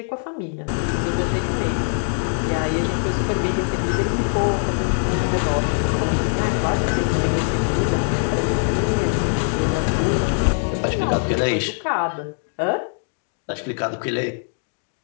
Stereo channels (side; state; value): right; silent; 64 dB below the other